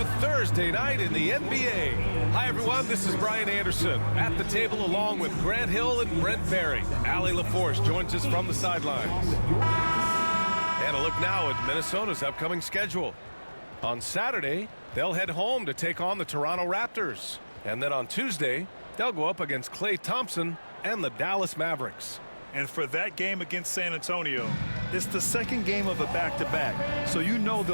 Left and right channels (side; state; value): both; inverted; correlation -1.00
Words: Thursday night in the NBA. Hi, everyone. This is Brian Anderson at the table along with Grant Hill and Brent Barry. Allie LaForce joins us from the sidelines. And a look now at Minnesota's upcoming schedule. On Saturday, they'll head home to take on the Toronto Raptors. And then on Tuesday, they'll go up against Klay Thompson and the Dallas Mavericks. And for that game against San Antonio, it's the second game of a back-to-back. So you know